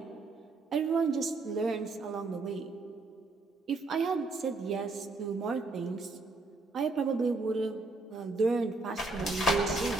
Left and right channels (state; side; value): quieter; left; 3.3 dB